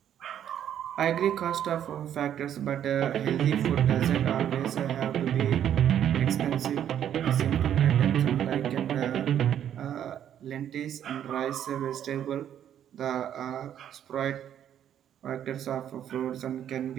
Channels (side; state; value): left; quieter; 10.0 dB